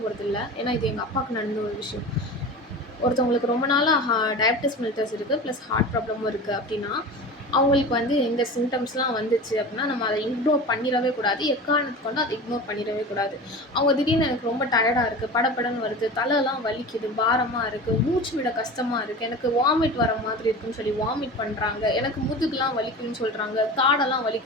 போகிறதில்ல. ஏன்னா இது எங்கள் அப்பாவுக்கு நடந்த ஒரு விஷயம். ஒருத்தவங்களுக்கு ரொம்ப நாளாக டயபிட்டிஸ் மெலிட்டஸ் இருக்குது, ப்ளஸ் ஹார்ட் ப்ராப்ளமும் இருக்குது அப்படின்னா, அவங்களுக்கு வந்து இந்த சிம்டம்ஸ்லாம் வந்துச்சு அப்படின்னா நம்ம அதை இக்னோர் பண்ணிடவே கூடாது. எக்காரணத்துக்கு கொண்டு அதை இக்னோர் பண்ணிடவே கூடாது. அவங்க திடீர்னு எனக்கு ரொம்ப டயர்டாக இருக்குது, படபடன்னு வருது, தலைலாம் வலிக்குது, பாரமாக இருக்குது, மூச்சு விட கஷ்டமாக இருக்குது, எனக்கு வாமிட் வர மாதிரி இருக்குன்னு சொல்லி வாமிட் பண்ணுறாங்க, எனக்கு முதுகுலாம் வலிக்குதுன்னு சொல்கிறாங்க, தாடெல்லாம்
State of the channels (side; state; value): both; normal; correlation 0.33